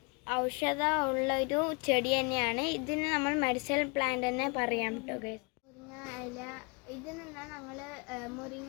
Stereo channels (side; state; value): right; quieter; 31.4 dB